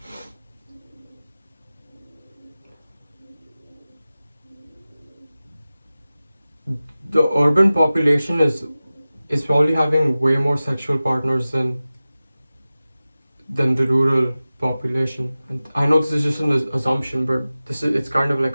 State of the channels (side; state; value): both; inverted; correlation -0.96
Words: The urban population is probably having way more sexual partners than the rural population. And I know this is just an assumption, but it's kind of